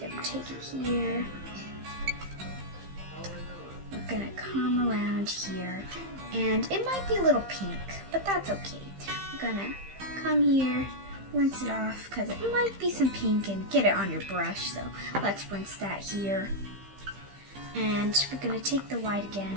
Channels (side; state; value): left; late; 15 ms